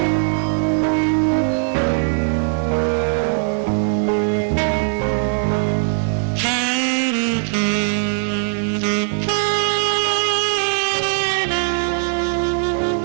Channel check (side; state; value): left; silent; 66 dB below the other